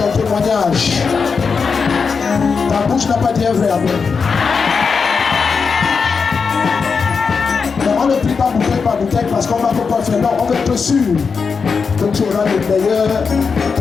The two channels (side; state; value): right; quieter; 5.4 dB